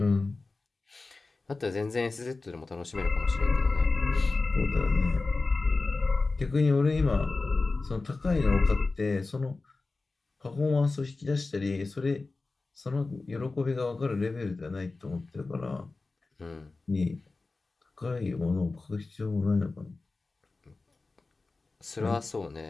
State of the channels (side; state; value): right; quieter; 3.6 dB